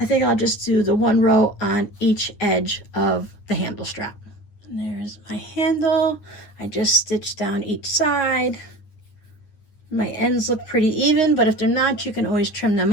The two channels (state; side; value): late; right; 9.7 ms